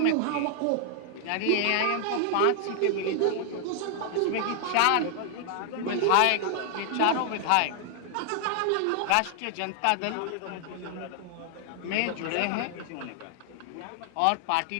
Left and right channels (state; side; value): different; both; correlation 0.00